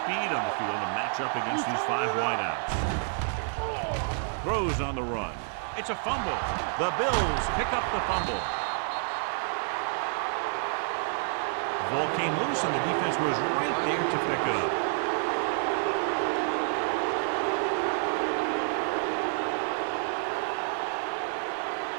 on the field to match up against these 5 wideouts. Throws on the run. It's a fumble. The Bills pick up the fumble. The ball came loose and the defense was right there to pick it up.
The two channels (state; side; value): silent; left; 59 dB below the other